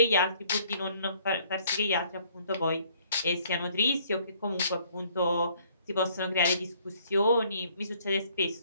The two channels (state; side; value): inverted; both; correlation -0.62